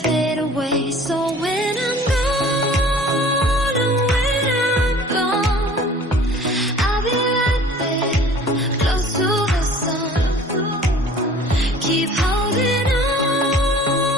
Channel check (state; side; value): normal; both; correlation 0.48